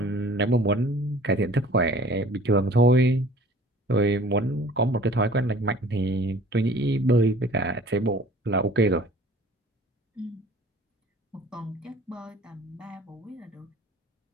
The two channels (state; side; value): normal; both; correlation 0.48